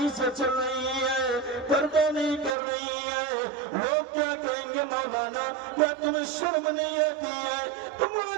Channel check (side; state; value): left; drops out; at 2.6 s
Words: سے چل رہی ہے، پردہ نہیں کر رہی ہے، لوگ کیا کہیں گے؟ مولانا کیا تمہیں شرم نہیں آتی ہے؟